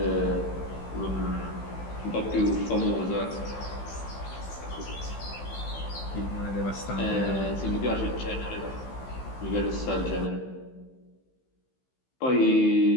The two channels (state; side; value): late; right; 15 ms